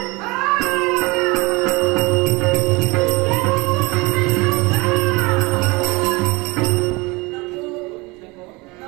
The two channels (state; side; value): quieter; left; 24.9 dB